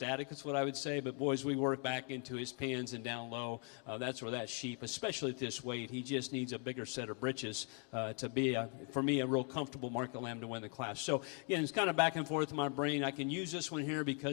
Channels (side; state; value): right; quieter; 38.3 dB